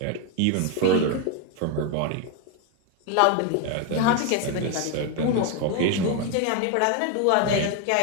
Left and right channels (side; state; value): both; different; correlation 0.01